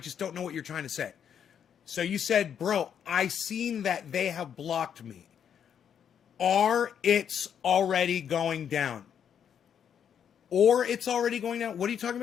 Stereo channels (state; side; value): quieter; right; 8.4 dB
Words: don't know what you're trying to say. So you said, bro, I seen that they have blocked me. Or it's already going down. Or it's already going down. What are you talking